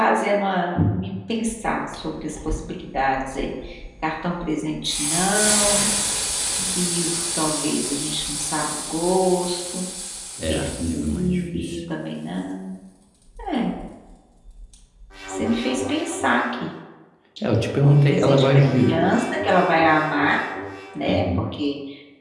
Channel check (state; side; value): identical; both; correlation 1.00